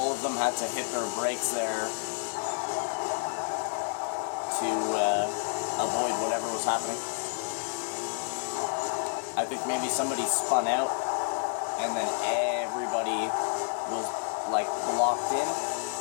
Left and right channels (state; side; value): silent; right; 58 dB below the other